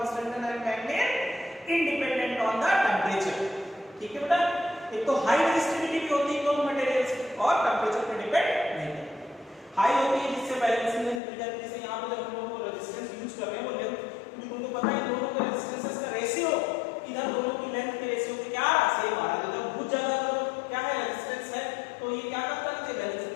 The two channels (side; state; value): right; drops out; at 11.2 s